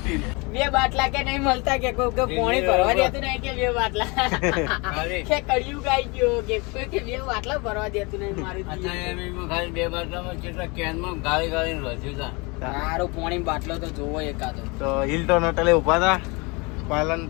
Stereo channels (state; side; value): quieter; right; 28.2 dB